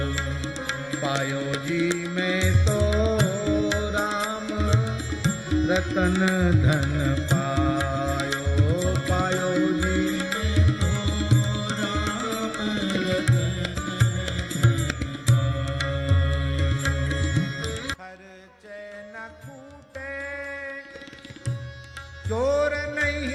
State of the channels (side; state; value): both; identical; correlation 1.00